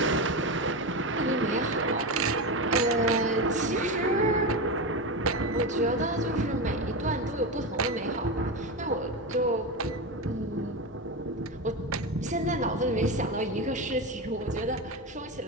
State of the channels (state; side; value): normal; both; correlation 0.17